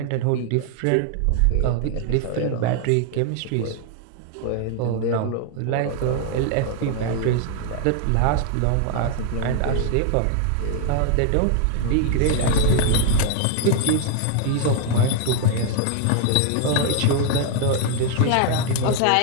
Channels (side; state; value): both; different; correlation 0.00